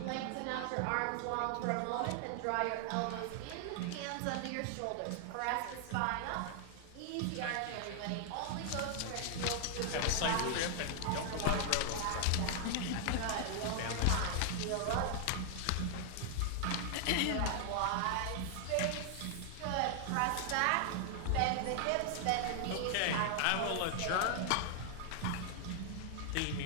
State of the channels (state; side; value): different; both; correlation 0.00